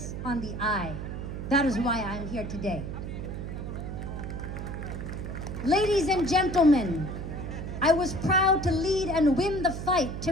on the eye. That is why I'm here today. Ladies and gentlemen, I was proud to lead and win the fight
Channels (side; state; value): right; noise; hum, 6 dB below the sound